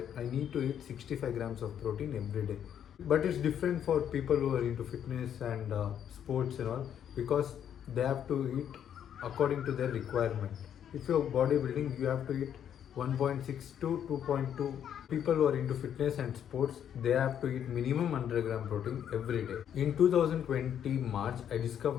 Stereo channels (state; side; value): quieter; right; 9.3 dB